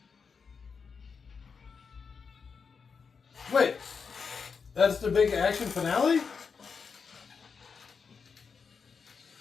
Wait, that's the big action finale?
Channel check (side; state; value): right; quieter; 5.7 dB